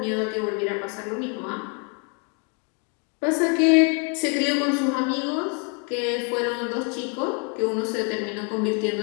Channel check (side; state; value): right; quieter; 37.2 dB